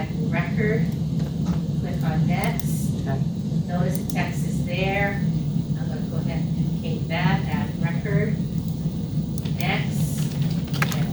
new record. Click on next. Okay. Notice the text is there. I'm gonna go ahead and duplicate that, add record. Next,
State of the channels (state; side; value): identical; both; correlation 1.00